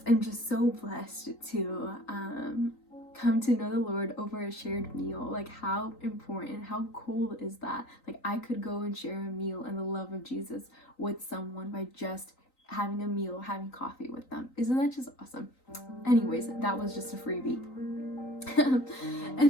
am just so blessed to come to know the Lord over a shared meal. Like how important, how cool is that? Like I could go and share a meal and the love of Jesus with someone by just having a meal, having coffee with them. Isn't that just awesome? Anyways, that was just a freebie.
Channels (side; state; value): right; late; 3.9 ms